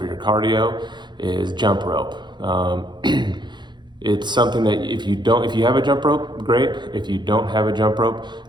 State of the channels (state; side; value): late; left; 0.22 ms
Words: your cardio, is jump rope. It's something that if you have a jump rope, great. If you don't have a jump rope,